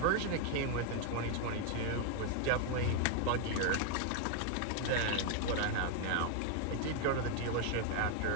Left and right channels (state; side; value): different; both; correlation 0.00